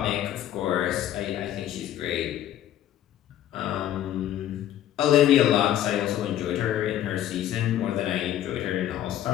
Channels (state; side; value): quieter; right; 11.8 dB